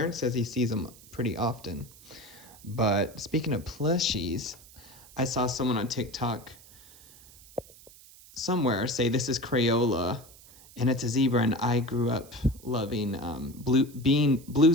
says he sees them pretty often. But speaking of plushies, I saw someone on TikTok somewhere say this is Crayola, and it's a zebra. And I grew up loving Blue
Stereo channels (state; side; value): noise; right; hiss, 22 dB below the sound